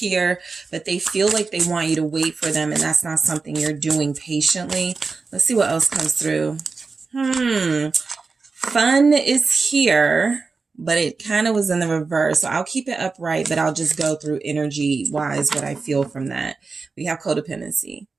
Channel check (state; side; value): quieter; left; 4.4 dB